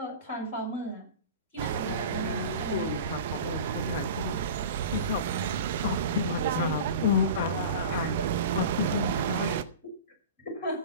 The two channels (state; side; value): inverted; both; correlation -0.34